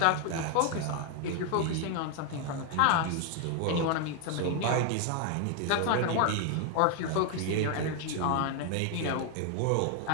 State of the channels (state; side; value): different; both; correlation 0.00